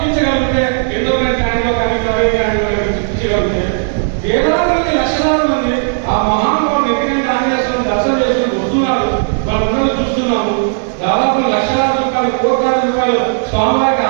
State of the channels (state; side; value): silent; left; digital silence